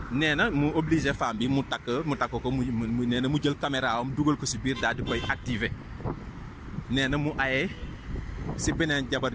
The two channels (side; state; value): both; identical; correlation 1.00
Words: nee na mu obligé femme bi mu takk ko mu nee na mu jël caméra am dugal ko si biir daal di koy activer nee na mu aye si beneen jabar